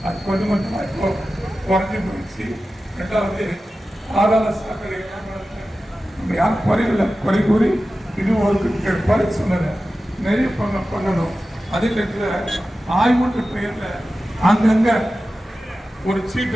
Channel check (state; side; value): normal; both; correlation 0.94